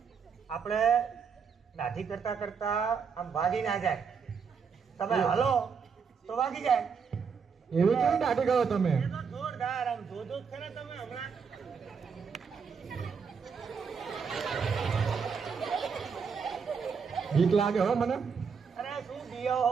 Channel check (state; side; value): quieter; left; 6.0 dB